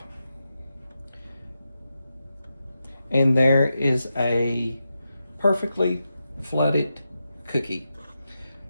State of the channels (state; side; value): inverted; both; correlation -0.88